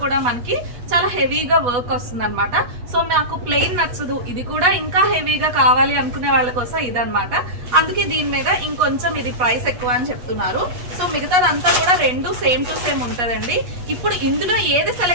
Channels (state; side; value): late; left; 8.2 ms